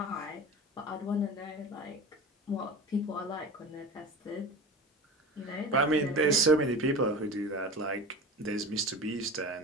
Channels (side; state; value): both; normal; correlation 0.33